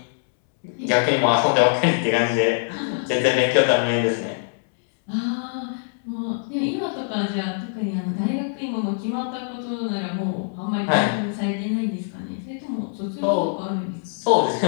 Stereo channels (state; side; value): silent; right; 63 dB below the other